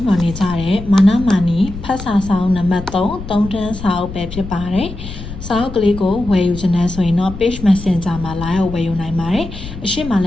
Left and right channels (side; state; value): left; noise; rumble, 11 dB below the sound